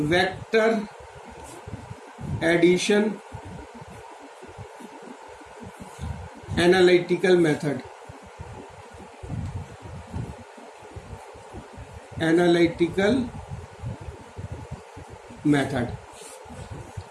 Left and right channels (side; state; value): both; identical; correlation 1.00